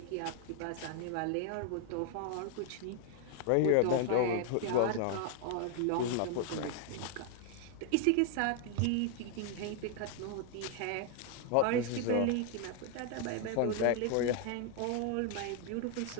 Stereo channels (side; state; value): both; different; correlation 0.00